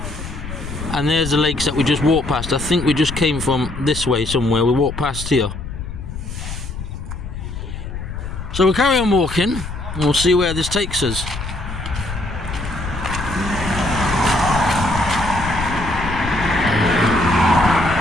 And there's the lakes that we just walked past. I think we just came from this way somewhere. We walked past here. So we'll carry on walking, and we'll see where this takes us.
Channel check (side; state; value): left; noise; rumble, 8 dB below the sound